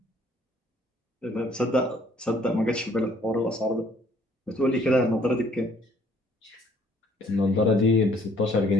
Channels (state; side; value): normal; both; correlation 0.62